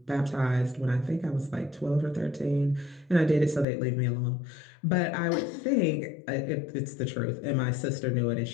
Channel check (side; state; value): right; drops out; at 3.7 s